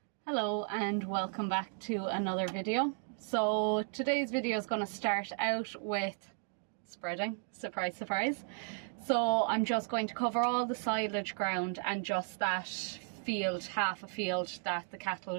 Hello and welcome back to another video. So today's video is going to start out with spreading, surprise surprise. So I'm just going to cover all the silage ground and just that field, half a field that the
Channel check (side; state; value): left; silent; 55 dB below the other